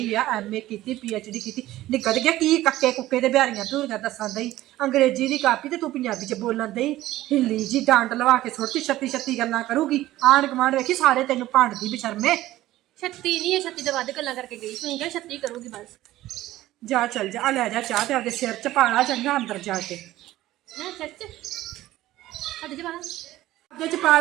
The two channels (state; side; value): quieter; left; 15.6 dB